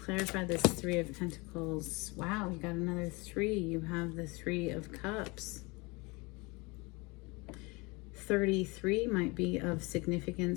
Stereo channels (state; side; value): quieter; right; 26.1 dB